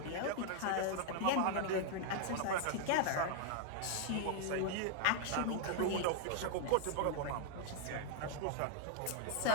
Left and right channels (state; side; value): different; both; correlation 0.00